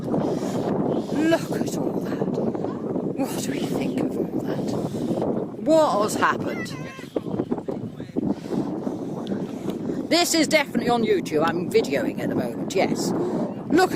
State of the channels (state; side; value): identical; both; correlation 1.00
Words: Look at all that. What do we think of all that? What has happened? This is definitely on YouTube. I'm videoing at the moment, yes. Look